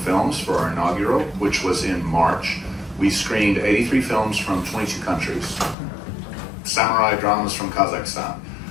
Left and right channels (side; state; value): right; drops out; at 5.8 s